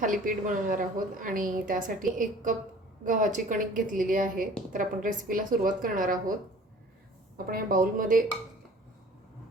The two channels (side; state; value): both; normal; correlation 0.48